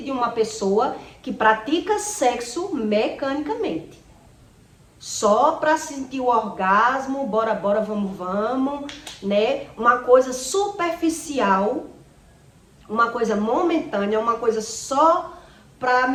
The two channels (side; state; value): both; identical; correlation 1.00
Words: de uma pessoa que pratica sexo mecanicamente. Só para sentir o orgasmo, bora, vamos, né? Uma coisa superficial, uma coisa momentânea, uma coisa só para